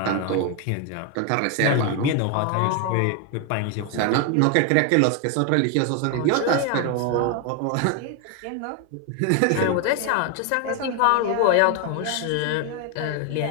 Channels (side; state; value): both; different; correlation 0.01